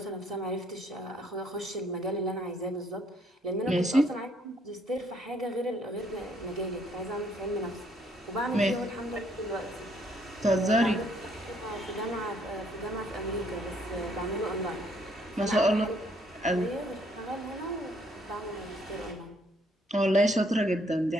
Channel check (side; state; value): both; normal; correlation 0.67